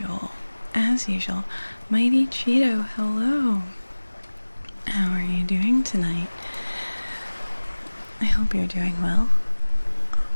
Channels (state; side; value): inverted; both; correlation -1.00